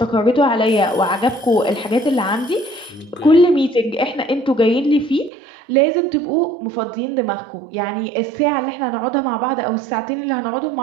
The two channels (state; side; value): drops out; left; at 5.3 s